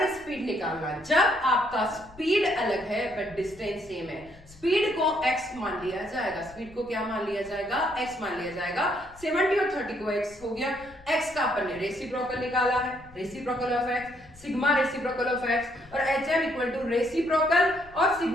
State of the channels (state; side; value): noise; left; rumble, 23 dB below the sound